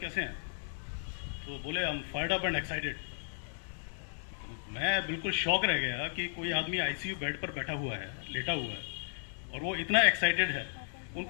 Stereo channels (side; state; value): right; silent; digital silence